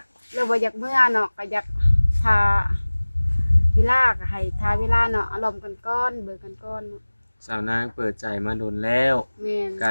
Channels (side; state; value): both; inverted; correlation -1.00